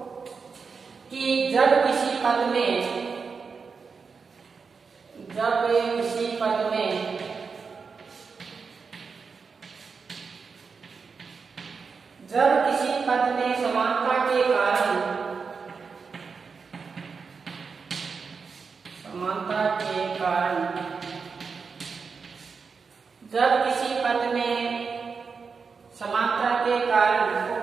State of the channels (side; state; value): left; quieter; 5.2 dB